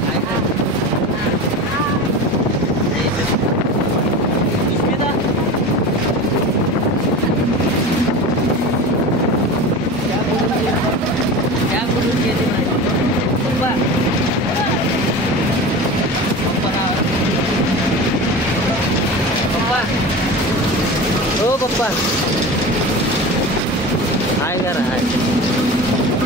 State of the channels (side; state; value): both; normal; correlation 0.31